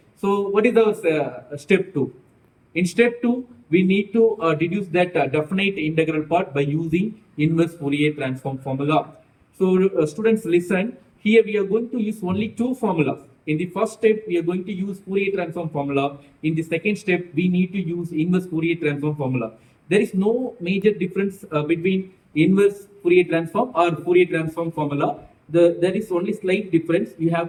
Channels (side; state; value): both; identical; correlation 1.00